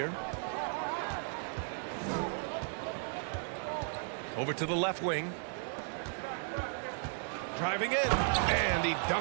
Over to the left wing. Driving in. And he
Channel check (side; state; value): left; silent; 54 dB below the other